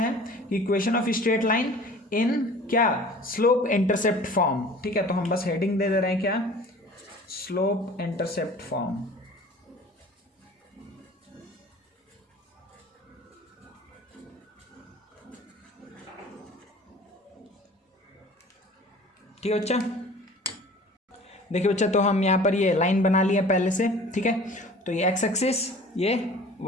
equation of straight line in क्या, स्लोप इंटरसेप्ट फॉर्म, ठीक है। तो हम बस हेडिंग दे रहे हैं क्या, स्लोप इंटरसेप्ट फॉर्म। ठीक है बच्चा, देखिए बच्चा, तो हम यहाँ पर ये लाइन बना लिया पहले से, ठीक है। तो ये एक्स एक्सिस, ये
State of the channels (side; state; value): both; normal; correlation 0.45